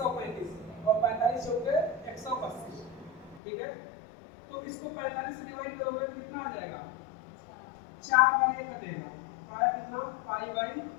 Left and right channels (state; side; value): drops out; right; at 3.4 s